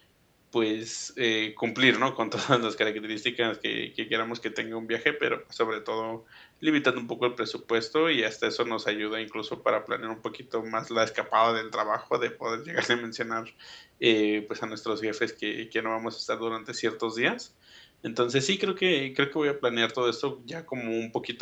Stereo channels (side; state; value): both; identical; correlation 1.00